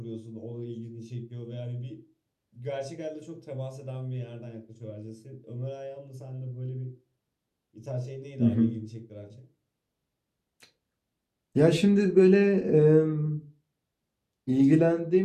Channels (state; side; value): identical; both; correlation 1.00